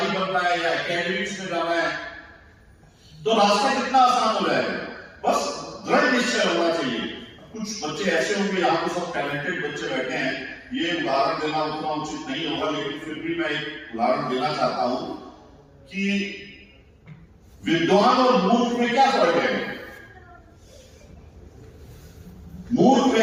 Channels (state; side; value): identical; both; correlation 1.00